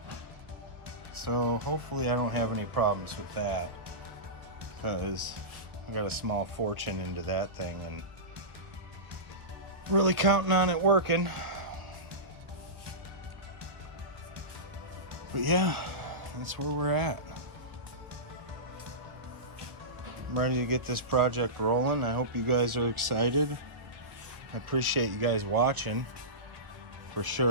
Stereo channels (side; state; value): left; late; 1.0 ms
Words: So hopefully I don't have any problems with that, because I got a small fortune into that thing and really counting on it working. But yeah, that's where we're at. I'm ready to get this project rolling. I hope you guys are excited. I appreciate you guys watching, for